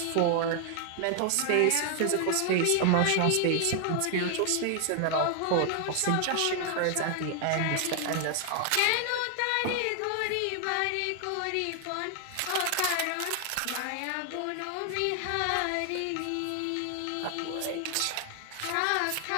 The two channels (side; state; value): both; different; correlation 0.00